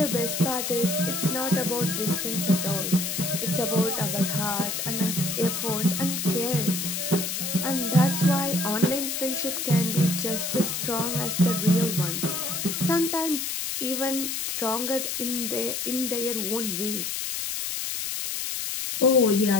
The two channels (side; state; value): left; noise; hiss, 2 dB below the sound